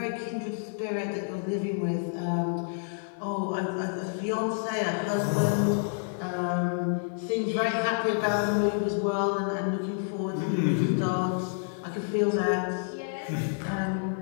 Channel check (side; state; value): right; silent; digital silence